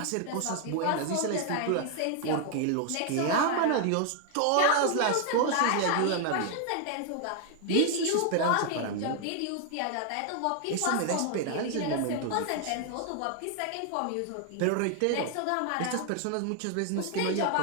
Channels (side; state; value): both; different; correlation 0.00